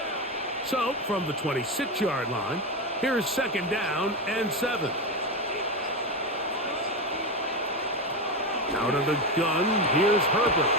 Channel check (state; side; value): normal; both; correlation 0.15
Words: So, from the 26-yard line, here's 2nd down and 7. Out of the gun, here's Herbert.